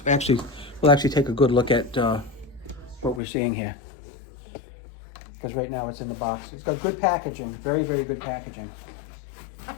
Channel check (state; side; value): drops out; right; at 3.2 s